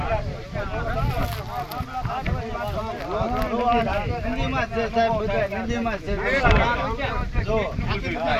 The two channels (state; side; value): identical; both; correlation 1.00